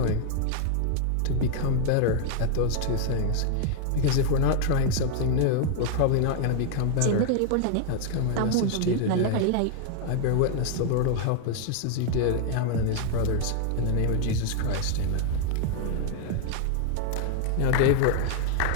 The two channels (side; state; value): both; different; correlation 0.00